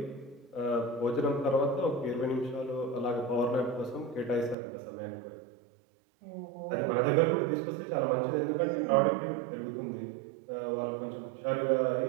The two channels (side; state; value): left; drops out; at 4.5 s